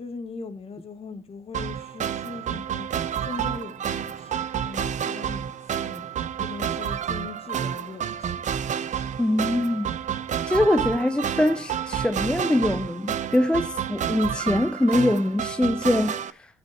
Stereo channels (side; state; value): both; normal; correlation 0.67